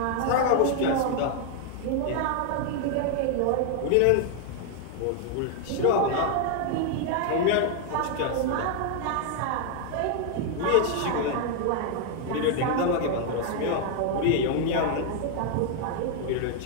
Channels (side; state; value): both; different; correlation 0.00